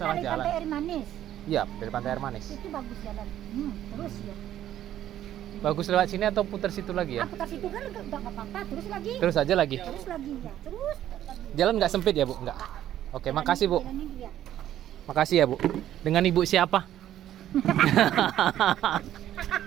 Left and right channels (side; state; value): left; quieter; 12.0 dB